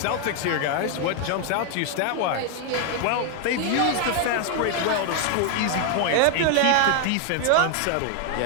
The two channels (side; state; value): both; different; correlation 0.00